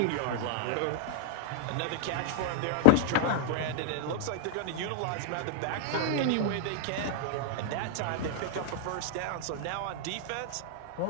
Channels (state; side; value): different; both; correlation -0.01